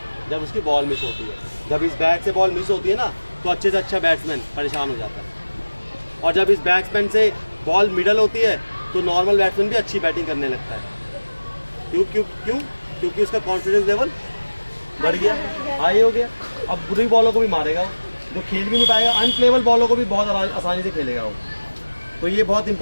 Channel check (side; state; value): both; inverted; correlation -1.00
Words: जब उसकी बॉल मिस होती है। जब इस बैट से बॉल मिस होती है ना, तो अच्छे से अच्छा बैट्समैन परेशान हो जाता है, और जब इस बैट्समैन से बॉल मिडल होती है तो नॉर्मल बैट्समैन भी अच्छी बैटिंग करने लगता है। क्योंकि उसका कॉन्फिडेंस लेवल बढ़ गया, हाई हो गया। अब बुरी बॉलों को भी मारेगा वो, जो खेल भी नहीं पाएगा, अनप्लेबल बॉलों को भी बहुत आसानी से खेलेगा वो। तो ये बहुत